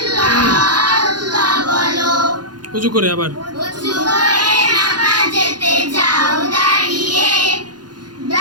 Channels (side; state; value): left; late; 0.70 ms